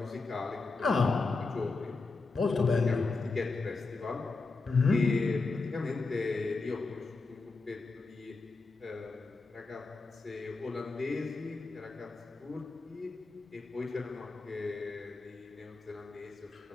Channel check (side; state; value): right; quieter; 3.8 dB